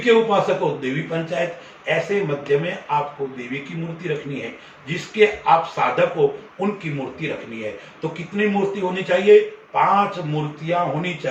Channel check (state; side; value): identical; both; correlation 1.00